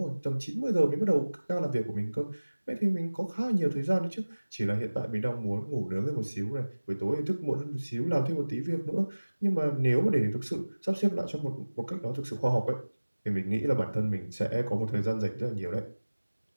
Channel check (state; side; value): inverted; both; correlation -1.00